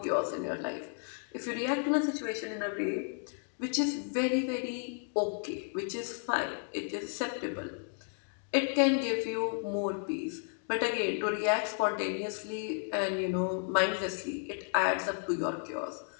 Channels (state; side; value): silent; right; 56 dB below the other